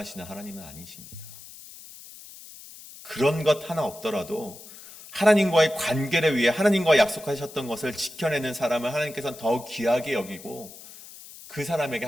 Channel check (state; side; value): noise; left; hiss, 17 dB below the sound